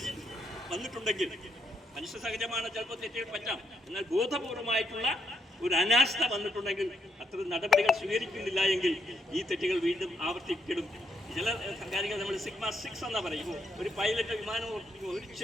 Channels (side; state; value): both; normal; correlation 0.77